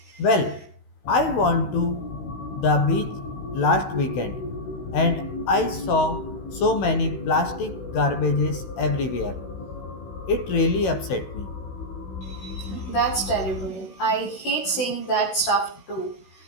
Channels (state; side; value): late; right; 16 ms